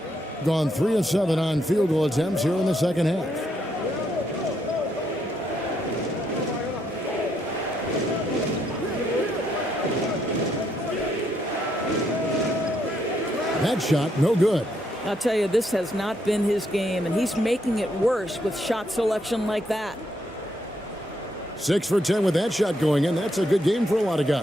Gone 3 of 7 on field goal attempts here in the second half. That shot, no good. I'll tell you, this has not been his game, and he's making it worse with shot selection like that. 6 for 10 with that shot going in. That's a good game for a lot of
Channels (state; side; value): normal; both; correlation 0.76